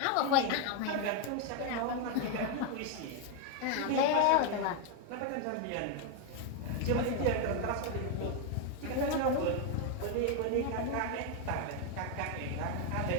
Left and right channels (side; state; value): both; different; correlation 0.01